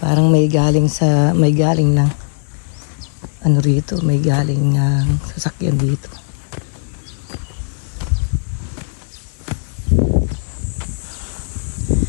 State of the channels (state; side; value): silent; right; digital silence